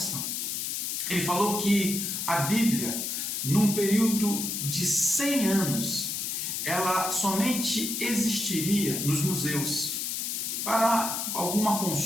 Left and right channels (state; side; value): noise; left; hiss, 2 dB below the sound